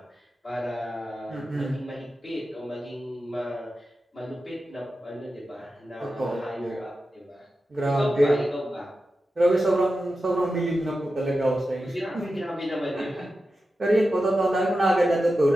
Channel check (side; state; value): both; normal; correlation 0.92